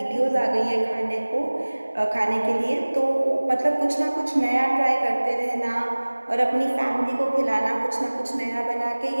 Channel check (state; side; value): inverted; both; correlation -1.00